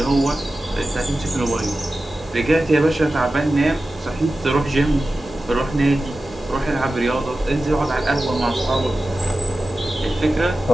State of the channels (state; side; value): normal; both; correlation 0.94